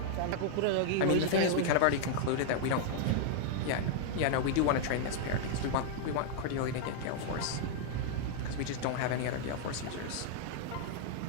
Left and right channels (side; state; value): both; different; correlation -0.01